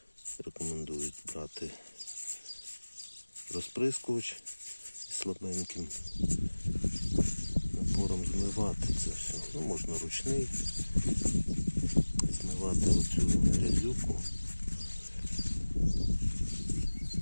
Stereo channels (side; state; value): both; inverted; correlation -1.00